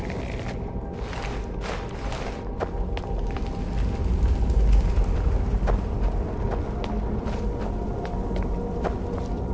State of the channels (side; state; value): both; identical; correlation 1.00